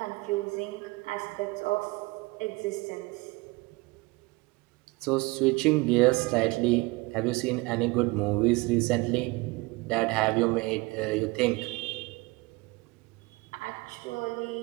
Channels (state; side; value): quieter; left; 24.0 dB